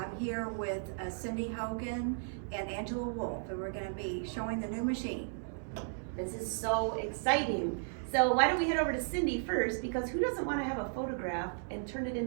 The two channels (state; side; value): silent; left; digital silence